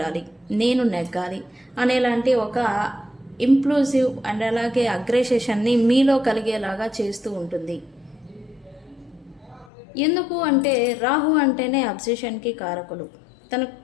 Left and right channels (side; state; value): right; drops out; at 9.7 s